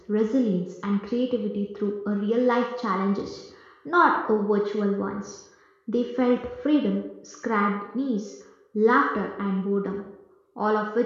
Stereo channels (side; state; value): both; identical; correlation 1.00